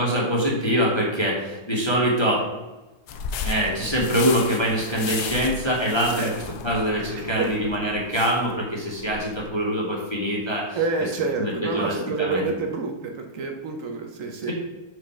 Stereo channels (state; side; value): late; right; 1.3 ms